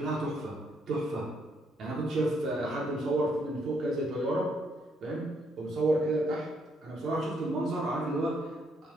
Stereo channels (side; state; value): both; normal; correlation 0.73